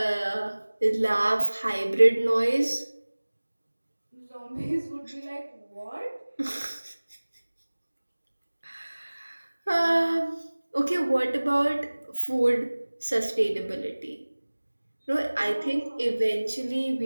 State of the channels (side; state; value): both; inverted; correlation -1.00